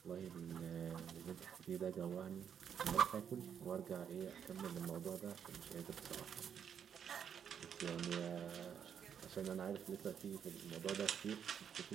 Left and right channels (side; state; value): left; quieter; 8.1 dB